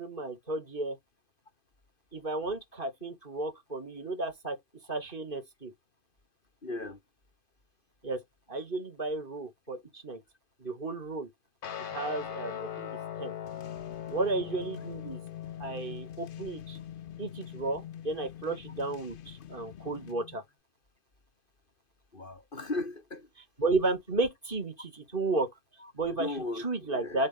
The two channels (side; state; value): right; late; 2.5 ms